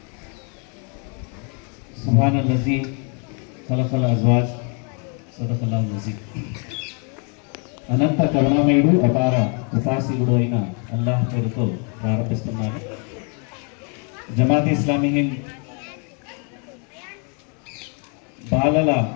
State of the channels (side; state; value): right; quieter; 38.5 dB